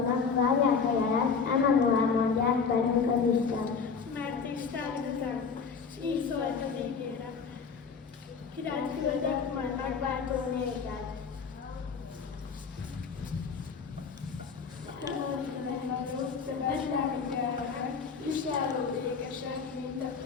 várják a jelet, emelően mondják velünk az Isten. Mert Isten üzem, s így szólt az égére. Királyt küldök, majd megváltó nézed. Betlehem gyermek, viselő békesen, mint a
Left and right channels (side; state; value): right; quieter; 5.6 dB